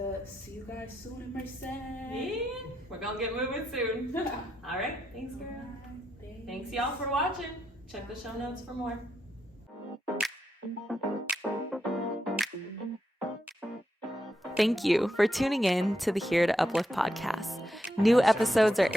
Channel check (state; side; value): normal; both; correlation 0.83